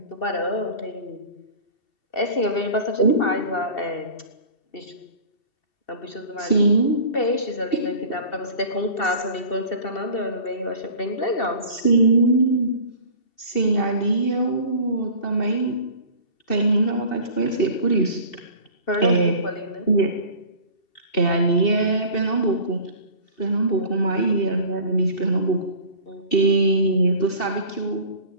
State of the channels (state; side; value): late; right; 2.7 ms